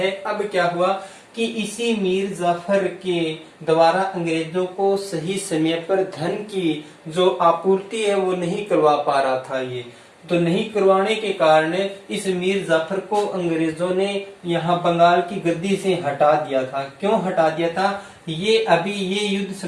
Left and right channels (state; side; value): identical; both; correlation 1.00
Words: अब क्या हुआ कि इसी मीर जाफर के द्वारा अंग्रेजों को सही समय पर धन की जो आपूर्ति है वो नहीं करवा पा रहा था ये, तो नहीं करवाने के कारण इस मीर जाफर को अंग्रेजों ने यहाँ बंगाल की गद्दी से हटा दिया था। क्यों हटा दिया था, ये अभी ये युद्ध